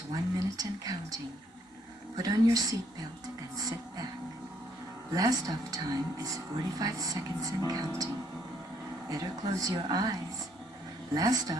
1 minute and counting. Put on your seatbelt and sit back. Last off time is 45 seconds and counting. Better close your eyes. Last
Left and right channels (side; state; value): both; normal; correlation 0.69